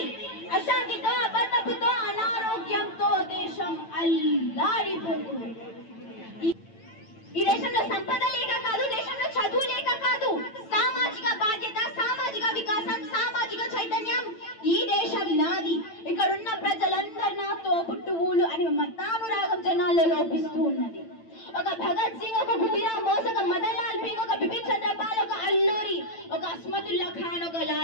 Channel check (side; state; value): right; late; 9.0 ms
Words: అశాంతితో అబద్ధపుతో అనారోగ్యంతో దేశం అల్లాడిపోతుంది. ఈ దేశంలో సంపద లేక కాదు, దేశంలో చదువు లేక కాదు, సామాజిక బాధ్యత, సామాజిక వికాసం, సామాజిక చైతన్యం. ఈ దేశం నాది, ఇక్కడున్న ప్రజలందరూ నాతో పుట్టువులు అని మతానురాగం జనాల్లో లోపిస్తూ ఉన్నది. ఒక భగత్ సింగ్, ఒక గుడిరామ్ బోస్, ఒక మదన్ లాల్ పింగ్, ఒక బిపిన్ చంద్రపాల్, ఒక అల్లూరి, ఒక అస్మతుల్లా ఖాన్, ఒక